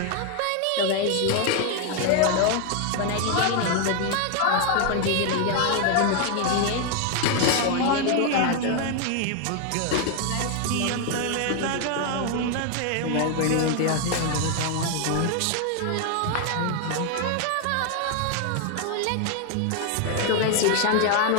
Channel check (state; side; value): different; both; correlation 0.00